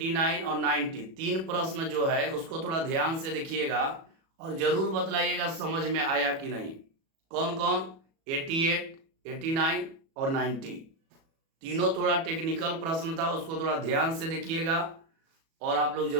और 90 तीन प्रश्न जो है उसको थोड़ा ध्यान से देखिएगा और जरूर बतलाइएगा समझ में आया कि नहीं। कौन कौन? 88, 89 और 90 तीनों थोड़ा टेक्निकल प्रश्न था, उसको थोड़ा ध्यान से देखिएगा और आप लोग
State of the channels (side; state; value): left; late; 37 ms